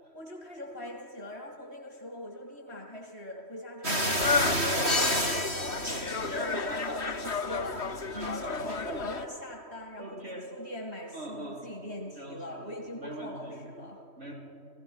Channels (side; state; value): left; late; 3.1 ms